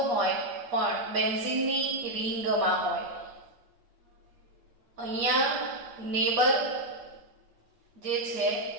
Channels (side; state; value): left; late; 8.3 ms